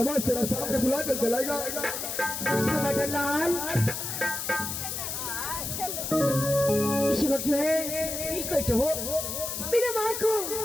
तेरा सामने बुला कर दिलाएगा। लाल इसी वक्त जो है हो मेरे माँ को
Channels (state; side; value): noise; left; hiss, 4 dB below the sound